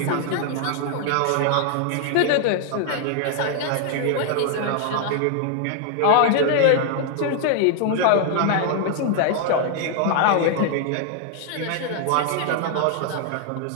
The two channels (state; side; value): different; both; correlation 0.00